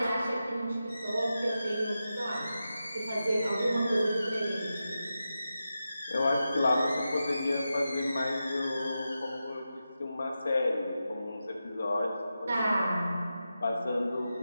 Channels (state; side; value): inverted; both; correlation -0.91